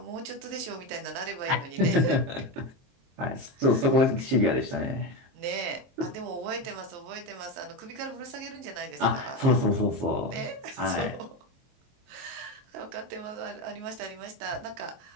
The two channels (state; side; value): late; left; 23 ms